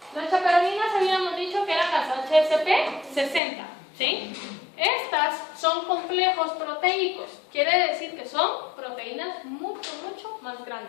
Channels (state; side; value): drops out; right; at 3.4 s